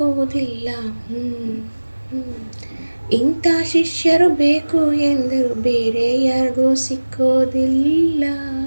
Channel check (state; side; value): inverted; both; correlation -1.00